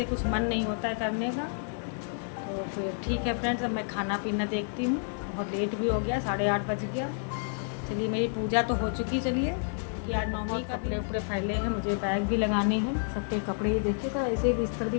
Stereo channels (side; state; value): right; silent; digital silence